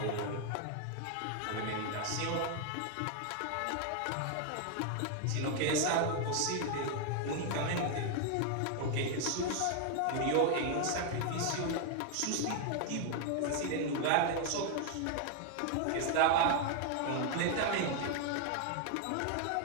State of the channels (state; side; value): different; both; correlation 0.00